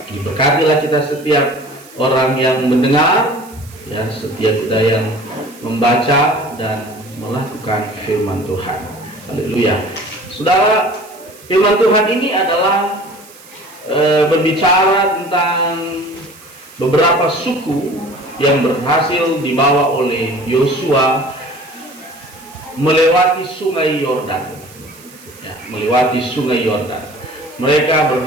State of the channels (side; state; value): right; noise; hiss, 22 dB below the sound